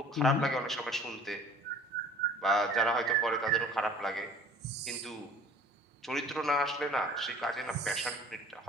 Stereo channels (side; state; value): both; normal; correlation 0.49